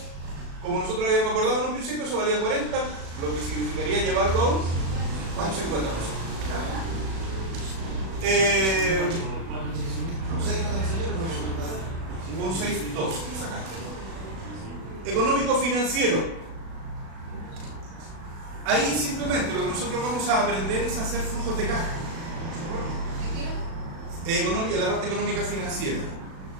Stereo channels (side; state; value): left; late; 36 ms